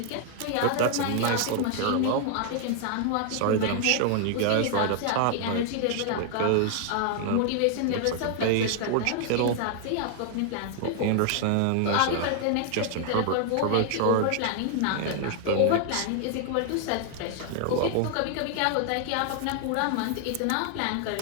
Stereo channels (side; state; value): both; different; correlation 0.00